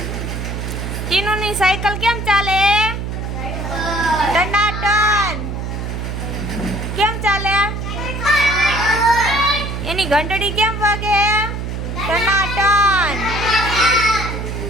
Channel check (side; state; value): right; noise; hum, 4 dB below the sound